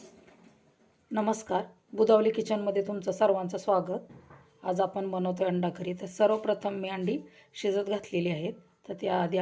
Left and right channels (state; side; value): identical; both; correlation 1.00